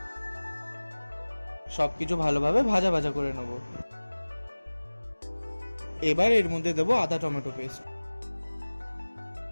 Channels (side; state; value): both; inverted; correlation -1.00